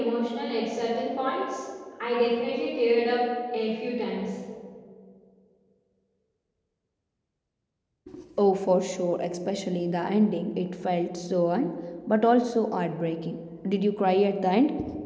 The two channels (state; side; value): identical; both; correlation 1.00